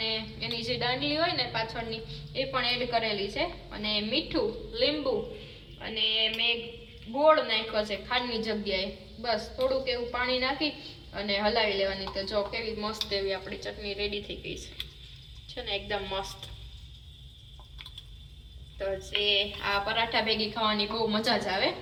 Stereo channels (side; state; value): both; identical; correlation 1.00